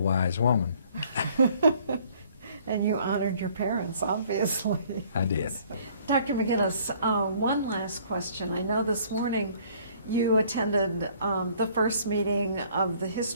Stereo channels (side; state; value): both; inverted; correlation -0.58